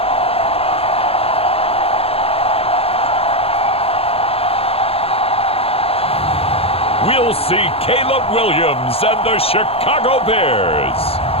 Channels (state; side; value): late; right; 0.28 ms